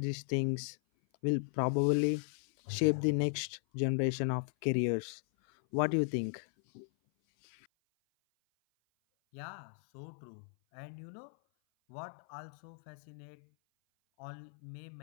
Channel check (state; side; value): silent; right; 54 dB below the other